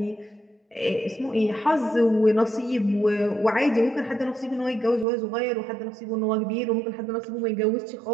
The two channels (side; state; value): left; drops out; at 5.1 s